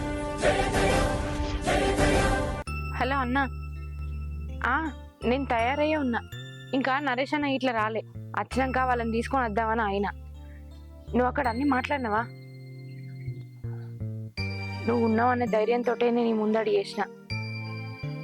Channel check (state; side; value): identical; both; correlation 1.00